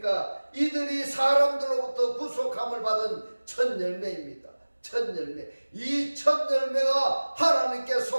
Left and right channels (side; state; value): both; inverted; correlation -1.00